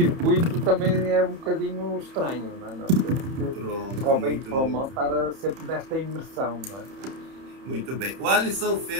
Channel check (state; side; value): late; left; 30 ms